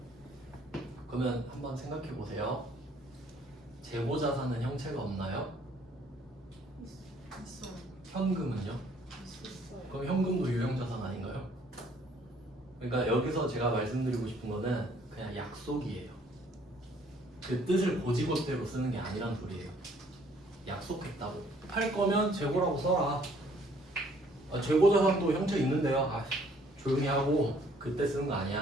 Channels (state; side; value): normal; both; correlation 0.62